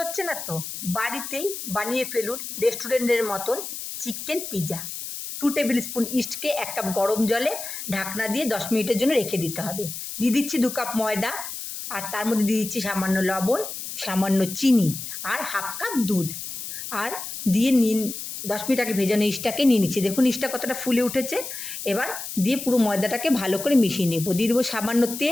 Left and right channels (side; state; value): left; noise; hiss, 8 dB below the sound